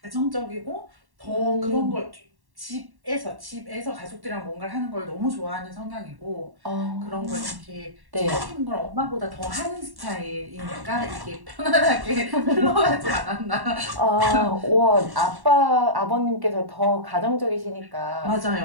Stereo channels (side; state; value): left; late; 1.1 ms